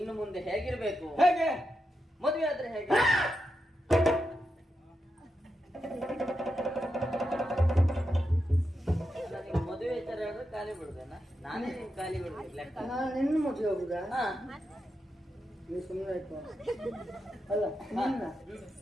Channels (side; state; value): both; normal; correlation 0.87